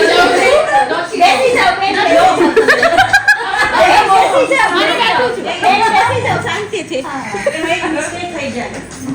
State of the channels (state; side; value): identical; both; correlation 1.00